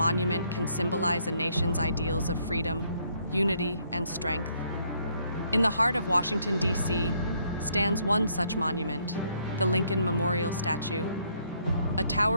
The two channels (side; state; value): both; inverted; correlation -0.69